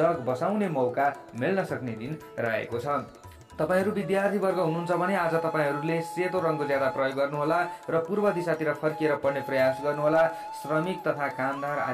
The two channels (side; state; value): both; identical; correlation 1.00